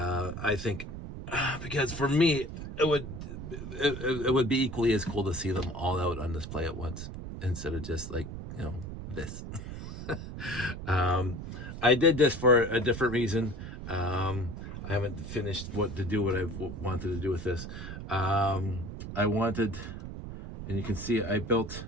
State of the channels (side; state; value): right; noise; rumble, 8 dB below the sound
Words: think because for me it would be equally as cool to see them all out on display at once, instead of just like, you know, this. I did this for a different reason. I haven't finished what I wanted to do with this. I wanted, and you can see I built